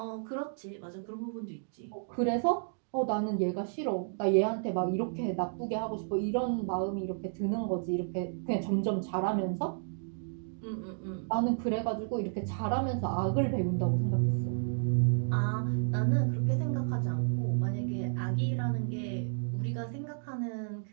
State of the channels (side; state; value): left; silent; digital silence